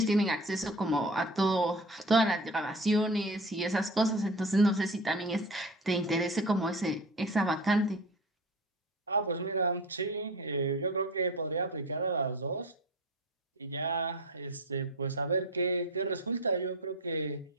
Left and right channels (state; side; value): normal; both; correlation 0.34